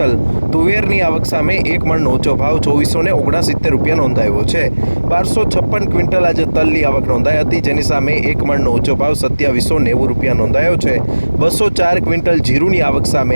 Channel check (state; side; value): inverted; both; correlation -1.00